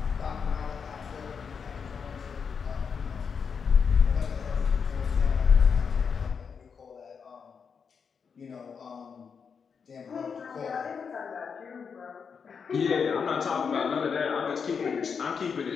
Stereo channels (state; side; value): quieter; right; 6.2 dB